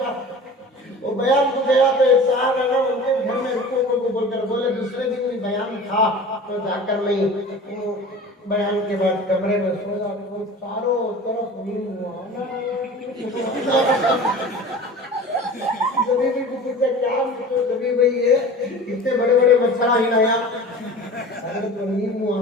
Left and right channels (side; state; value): both; normal; correlation 0.38